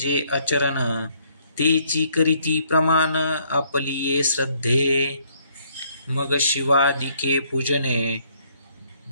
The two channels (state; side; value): inverted; both; correlation -0.67